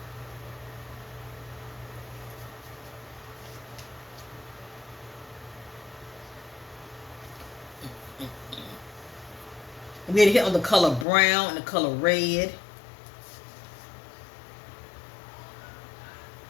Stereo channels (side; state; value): right; drops out; at 11.1 s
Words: I'm getting a hit on the color brown and the color red.